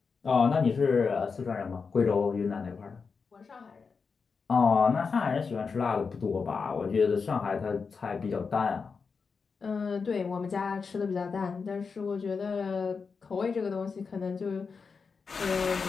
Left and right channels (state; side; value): quieter; right; 5.2 dB